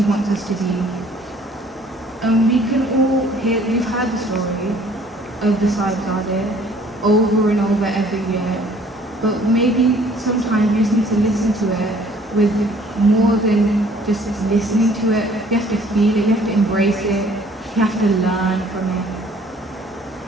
wants us to be. And we can all we've heard the story of the Sahibzadeh over and over every year, but maybe sometimes you just need to listen to it with more than just listening to it. You have to feel it, you have to embrace it, you have to learn from it.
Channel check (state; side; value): normal; both; correlation 0.57